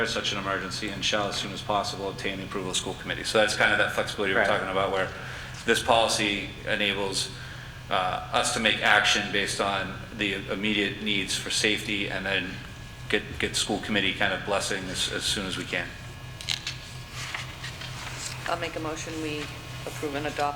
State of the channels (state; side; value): identical; both; correlation 1.00